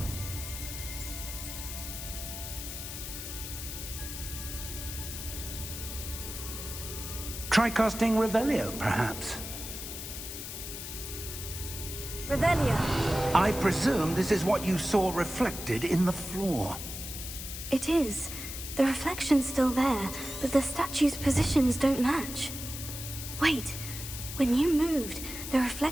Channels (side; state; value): left; noise; hiss, 8 dB below the sound